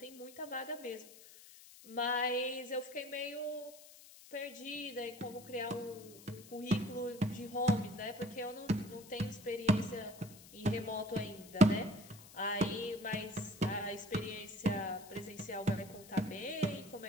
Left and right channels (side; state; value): left; noise; hiss, 19 dB below the sound